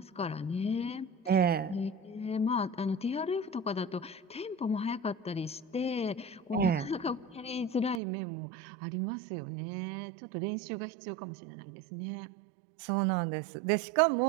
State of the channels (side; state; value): left; drops out; at 8.0 s